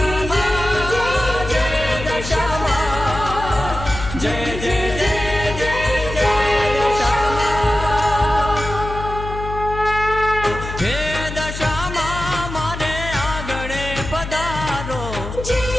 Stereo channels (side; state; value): left; noise; hum, 8 dB below the sound